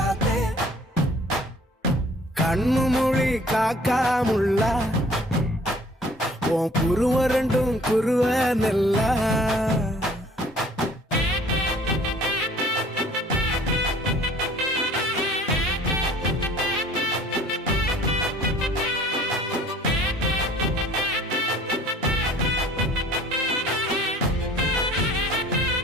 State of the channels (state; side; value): normal; both; correlation 0.53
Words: கண்ணு மொழி காக்காமுள்ள உன் குருவ ரெண்டும் குருவ நெல்லா